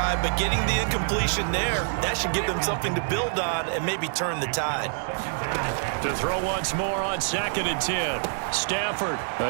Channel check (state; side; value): silent; left; digital silence